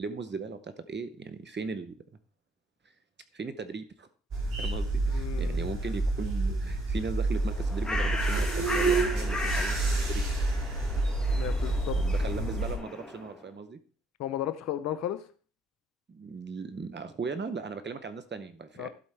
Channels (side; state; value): both; normal; correlation 0.68